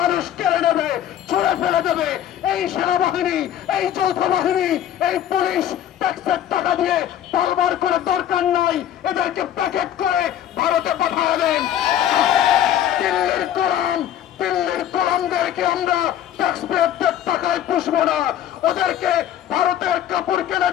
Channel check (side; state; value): right; quieter; 10.9 dB